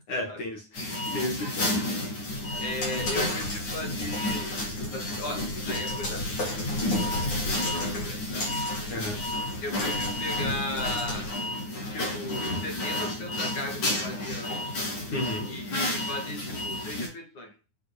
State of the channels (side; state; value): right; late; 9.7 ms